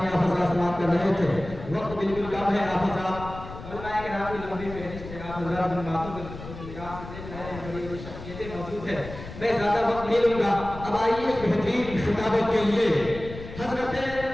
آپ حضرات سماعت کر رہے تھے، وقت بالکل کم ہے۔ آپ حضرات علماء کرام کی لمبی فہرست ہے، آپ حضرات ان باتوں کو نگاہ سے دیکھ رہے ہیں، بڑی بڑی شخصیتیں موجود ہیں، میں زیادہ وقت نہیں لوں گا۔ اب آئیے بہترین خطابت کے لیے حضرت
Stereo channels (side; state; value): left; noise; rumble, 12 dB below the sound